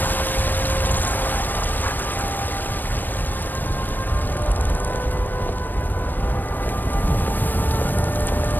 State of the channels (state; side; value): late; right; 0.091 ms